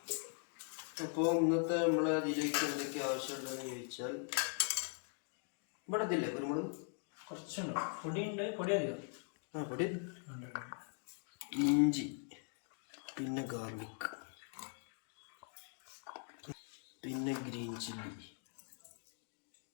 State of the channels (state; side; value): silent; right; 50 dB below the other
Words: അപ്പോൾ ഇന്നത്തെ നമ്മളെ ഇതിലേക്ക് എന്തൊക്കെ ആവശ്യമുള്ളതെന്ന് ചോദിച്ചാൽ, ഇവിടെ ഇതില്ലേ കുരുമുളക് കുറച്ചുണ്ട്, പൊടിയുണ്ട്, പൊടി അധികം. പൊടി, ഇഞ്ചി, പിന്നെ ഗാർലിക്, പിന്നെ ഗ്രീൻ ചില്ലി,